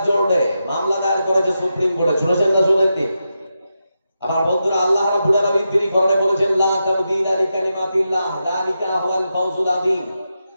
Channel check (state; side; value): inverted; both; correlation -0.88